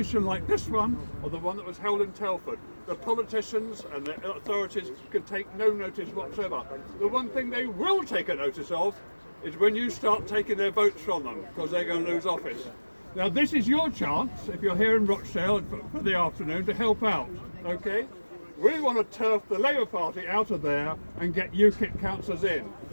like this one or the one that was held in Telford, the politicians and the authorities could take no notice whatsoever. The one thing they will take a notice of is when you start taking their votes from them, because they're going to lose office. Now this is your chance, if you're here in Rochdale for the afternoon, to help out, okay? We want to turf the Labour Party out of there and get UKIP councillors in.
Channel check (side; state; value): both; inverted; correlation -1.00